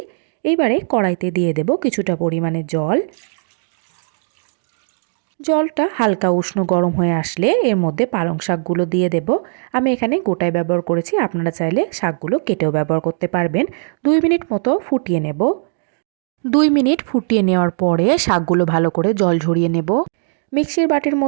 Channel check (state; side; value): silent; left; 67 dB below the other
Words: এইবারে কড়াইতে দিয়ে দেব কিছুটা পরিমাণে জল। জলটা হালকা উষ্ণ গরম হয়ে আসলে এর মধ্যে পালং শাকগুলো দিয়ে দেব। আমি এখানে গোটায় ব্যবহার করেছি, আপনারা চাইলে শাকগুলো কেটেও ব্যবহার করতে পারবেন। 2 মিনিট মতো ফুটিয়ে নেব। 2 মিনিট ফুটিয়ে নেওয়ার পরে শাকগুলো ভালো করে জল ঝরিয়ে নেব। মিক্সির বাটির